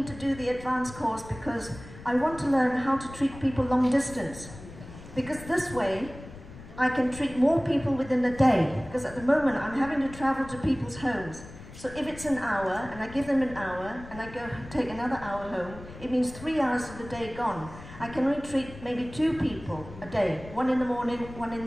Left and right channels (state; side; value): noise; left; rumble, 15 dB below the sound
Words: to do the advanced course because I want to learn how to treat people long distance. Because this way, I can treat more people within a day. Because at the moment, I'm having to travel to people's homes. So if it's an hour, and I give them an hour, and I go take another hour home, it means 3 hours of the day gone. I can only treat maybe 2 people a day, 1 in the morning, 1 in